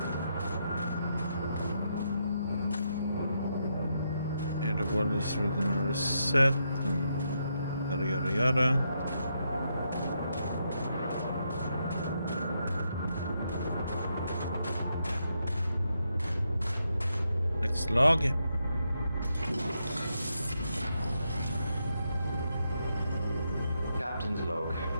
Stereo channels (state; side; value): inverted; both; correlation -0.81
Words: And the world is within a reset. Yada yada yada. Log. Captain's log